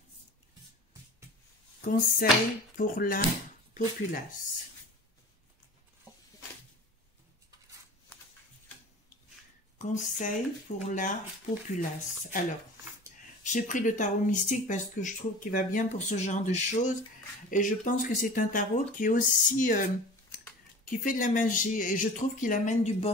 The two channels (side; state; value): both; normal; correlation 0.39